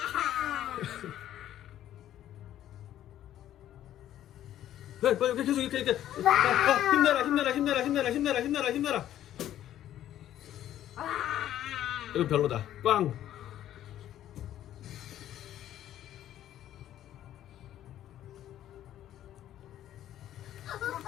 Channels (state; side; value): quieter; right; 12.0 dB